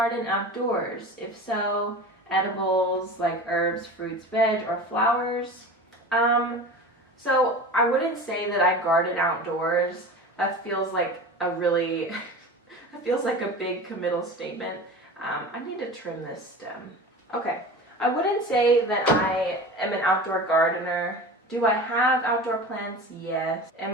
outdoors? If so, edibles like herbs, fruits, veg, or flowers? So I wouldn't say that I garden outdoors. That feels like a really, that feels like a big committal statement. I need to trim this stem. Okay, I wouldn't say that I am an outdoor gardener. Do I have outdoor plants? Yes.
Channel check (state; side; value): normal; both; correlation 0.34